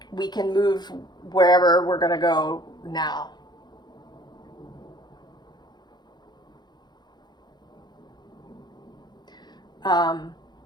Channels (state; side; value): late; right; 0.21 ms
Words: we can move wherever we're going to go now. And